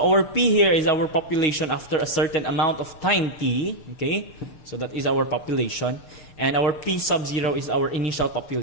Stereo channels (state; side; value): late; right; 6.7 ms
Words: our P here is our population after a certain amount of time t, okay? So that is our population. And our P sub 0 is our initial